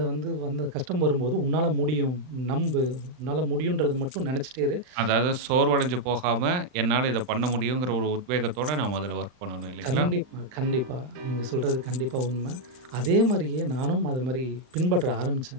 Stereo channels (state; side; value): late; left; 39 ms